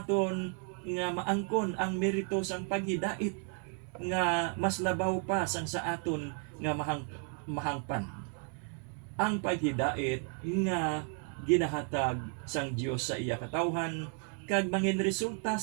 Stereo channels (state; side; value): quieter; left; 38.9 dB